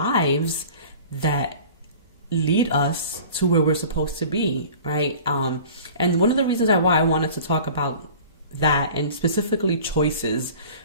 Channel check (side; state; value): both; inverted; correlation -0.43